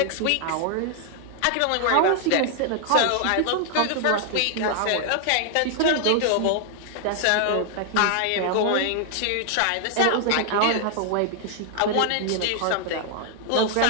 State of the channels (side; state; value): both; different; correlation 0.00